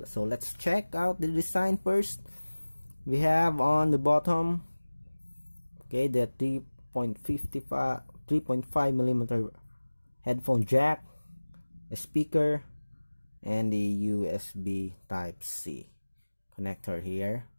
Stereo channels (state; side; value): inverted; both; correlation -1.00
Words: so let's check out the design first. We have on the bottom, okay, the 3.5mm headphone jack, a speaker, and the USB Type-C connector here.